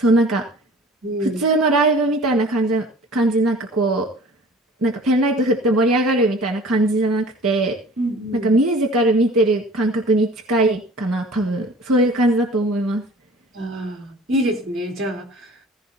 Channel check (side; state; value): both; normal; correlation 0.46